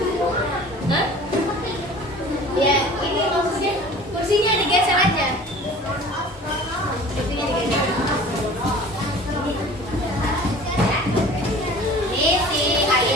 Hah? Ya, ini maksudnya kursinya digeser aja. Kursinya digeser. Ini si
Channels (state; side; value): normal; both; correlation 0.44